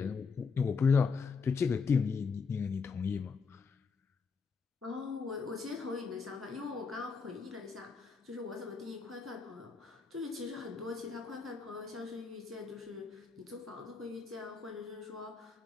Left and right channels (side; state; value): right; quieter; 5.1 dB